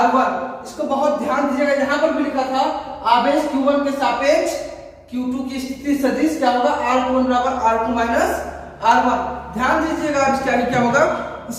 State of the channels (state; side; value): identical; both; correlation 1.00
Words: इसको बहुत ध्यान दीजिएगा, यहां पर भी लिखा था आवेश Q1 के सापेक्ष Q2 की स्थिति सदिश क्या होगा, R21 बराबर R2 माइनस R1। ध्यान दीजिएगा, अब इसके आगे क्या होगा,